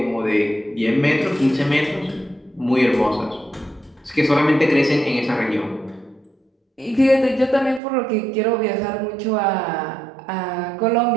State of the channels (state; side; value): drops out; left; at 7.8 s